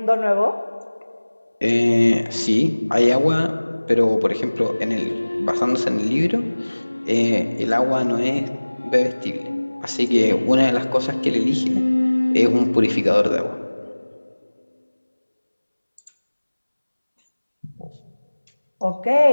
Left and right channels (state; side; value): inverted; both; correlation -1.00